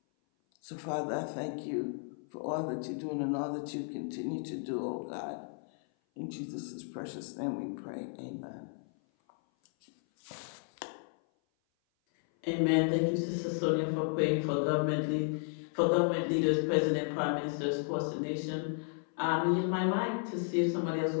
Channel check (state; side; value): silent; right; 55 dB below the other